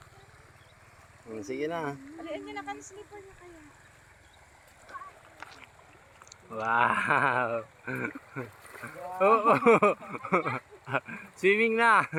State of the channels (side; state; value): both; identical; correlation 1.00